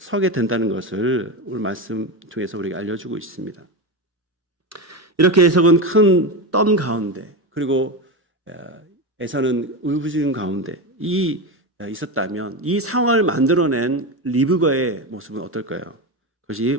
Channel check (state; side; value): normal; both; correlation 0.17